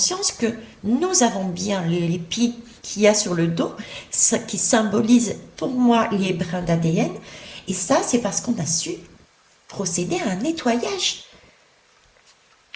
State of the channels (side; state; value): both; identical; correlation 1.00